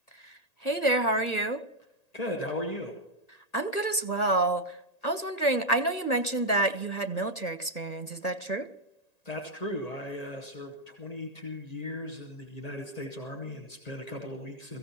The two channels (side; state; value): right; late; 1.9 ms